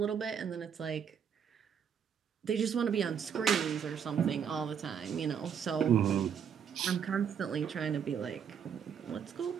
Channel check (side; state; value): left; quieter; 7.7 dB